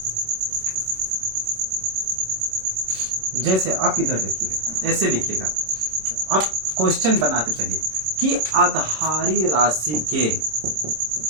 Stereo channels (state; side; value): late; left; 26 ms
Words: जैसे आप इधर देखिएगा, ऐसे लिखिएगा, आप क्वेश्चन बनाते चलिए कि आधारी राशि के,